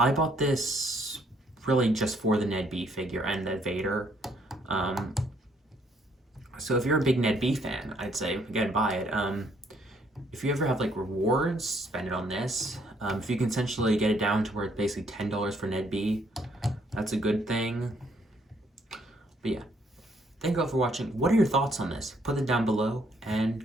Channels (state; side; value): normal; both; correlation 0.68